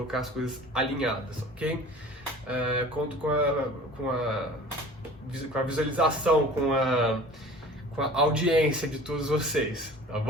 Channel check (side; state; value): both; normal; correlation 0.44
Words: as coisas alinhadas, ok? Conto com a visualização, com a audiência de todos vocês, tá